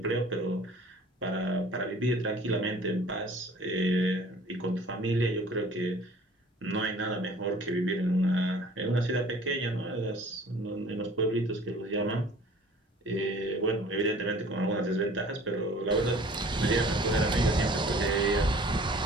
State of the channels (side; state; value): both; normal; correlation 0.49